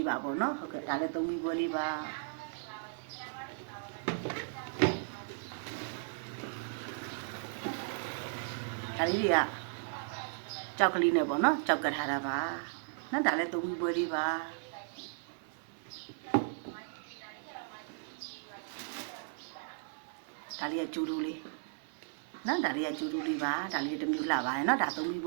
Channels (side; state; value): left; silent; 54 dB below the other